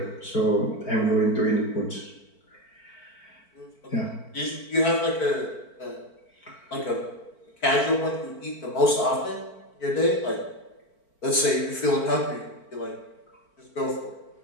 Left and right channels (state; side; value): late; right; 4.5 ms